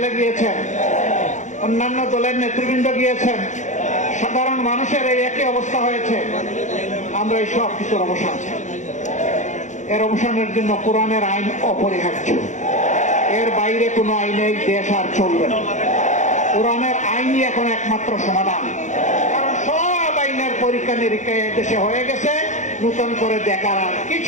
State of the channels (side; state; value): right; late; 0.35 ms